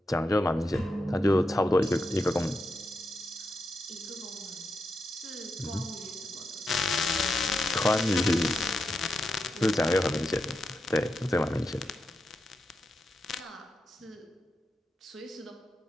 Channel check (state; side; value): normal; both; correlation 0.86